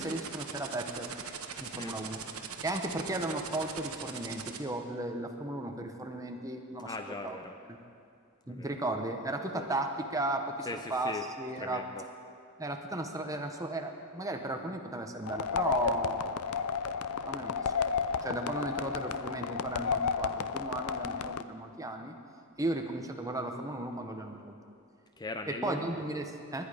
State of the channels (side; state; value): both; normal; correlation 0.11